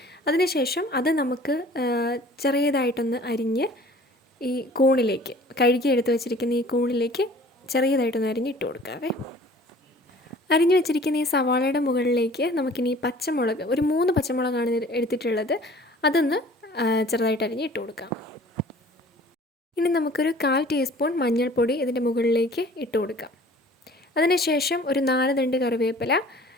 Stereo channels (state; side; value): normal; both; correlation 0.49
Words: അതിനുശേഷം അത് നമുക്ക് ചെറിയതായിട്ടൊന്ന് അരിഞ്ഞ് ഈ കൂണിലേക്ക് കഴുകി എടുത്ത് വെച്ചിരിക്കുന്ന ഈ കൂണിലേക്ക് ചെറിയതായിട്ടൊന്ന് അരിഞ്ഞ് ഇട്ട് കൊടുക്കാവേ. അരിഞ്ഞു വെച്ചിരിക്കുന്ന ഈ സവാളയുടെ മുകളിലേക്ക് നമുക്കിനി പച്ചമുളക് ഒരു 3 പച്ചമുളകാണ് എടുത്തിട്ടുള്ളത്. അതൊന്ന് ചെറുതായിട്ട് അരിഞ്ഞ് ഇട്ട് കൊടുക്കാം. ഇനി നമുക്കൊരു 1/4 ടീസ്പൂൺ മഞ്ഞൾപ്പൊടി ഇതിൻ്റെ മുകളിലേക്ക് ഇട്ട് കൊടുക്കാം. അതിനുശേഷം ഒരു 4 തണ്ട് കറിവേപ്പില